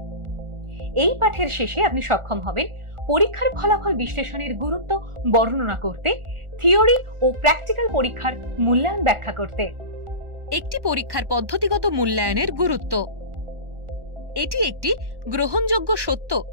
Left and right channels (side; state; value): left; late; 1.4 ms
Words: এই পাঠের শেষে আপনি সক্ষম হবেন পরীক্ষার ফলাফল বিশ্লেষণের গুরুত্ব বর্ণনা করতে, থিওরি ও প্র্যাকটিক্যাল পরীক্ষার মূল্যায়ন ব্যাখ্যা করতে। একটি পরীক্ষার পদ্ধতিগত মূল্যায়নের গুরুত্ব। এটি একটি গ্রহণযোগ্য সত্য